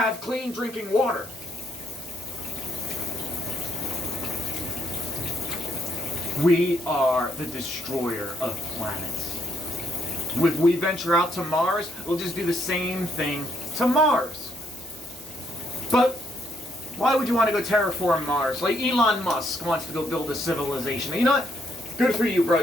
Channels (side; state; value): right; noise; hiss, 18 dB below the sound